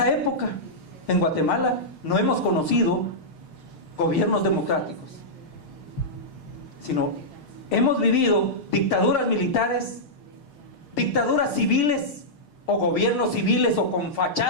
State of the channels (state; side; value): late; right; 6.6 ms